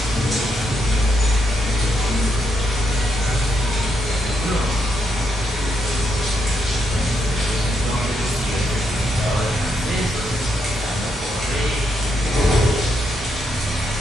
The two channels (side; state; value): both; normal; correlation 0.78